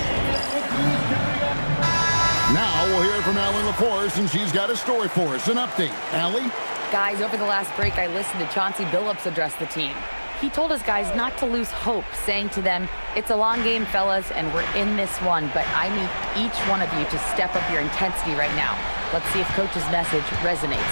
Now we'll hear from Allie LaForce, and she's got a story for us. An update. Allie? Guys, over the last break, I listened to Chauncey Billups address the team. He told his guys not to lose hope, saying to them, "It's a long game, fellas, and we're in this one, but I need each one of you to step up your intensity right now." Let's see if Coach's message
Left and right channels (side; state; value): both; inverted; correlation -1.00